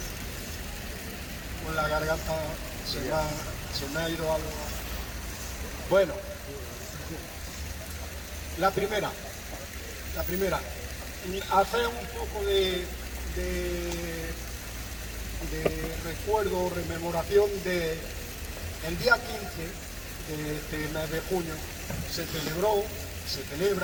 con la garganta, se me ha ido algo. Bueno, la primera, hacer un poco de recuerdo, rememoración de el día 15 de este mes de junio. Se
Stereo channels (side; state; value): both; identical; correlation 1.00